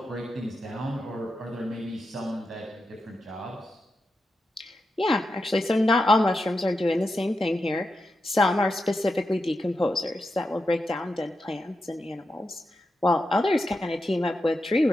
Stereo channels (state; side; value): normal; both; correlation 0.88